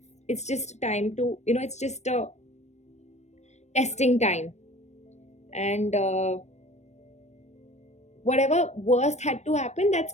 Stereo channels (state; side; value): late; right; 0.33 ms